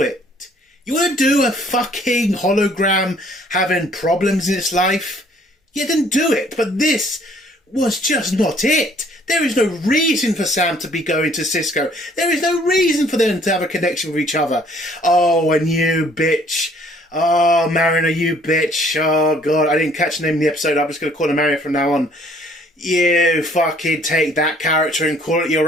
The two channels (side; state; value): both; normal; correlation 0.60